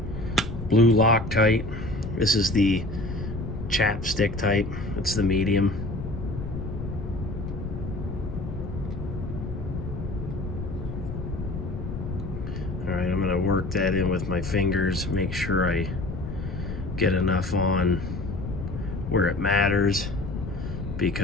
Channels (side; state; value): left; noise; rumble, 6 dB below the sound